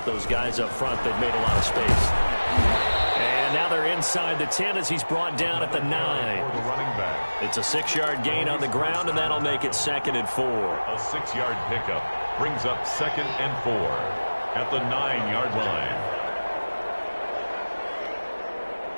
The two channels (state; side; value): inverted; both; correlation -1.00